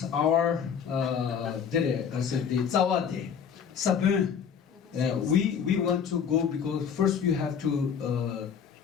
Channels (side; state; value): right; quieter; 7.3 dB